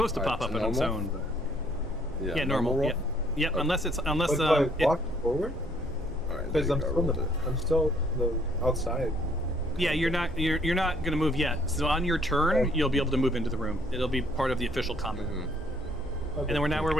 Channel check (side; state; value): both; normal; correlation 0.64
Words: to Alright, pop up so on its normal? own. But... Yeah, Yeah, normal. roll? Yeah. Yep. Okay. Unless But do I walk forward? Alright, Because there I'm you go, still, rolled it. I'm still outside. yeah, you're not gonna move yet. So on your turn, Okay. you'll be able to move into the room. It'll be part of the official combat. Mhm. Okay. And then we're